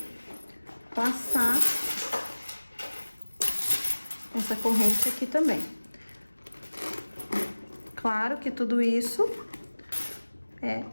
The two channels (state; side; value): inverted; both; correlation -1.00